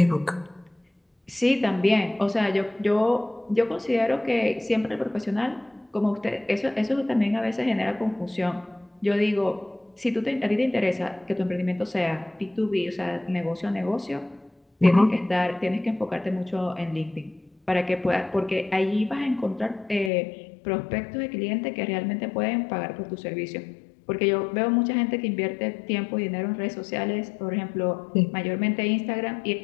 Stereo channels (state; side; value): drops out; right; at 20.1 s